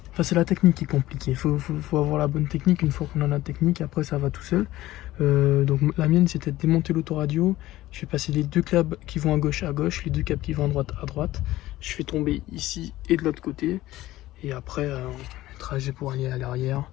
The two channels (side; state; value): right; quieter; 16.2 dB